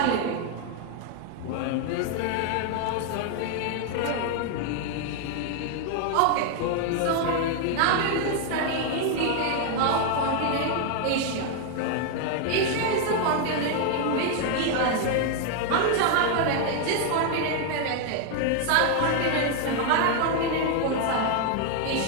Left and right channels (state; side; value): different; both; correlation 0.00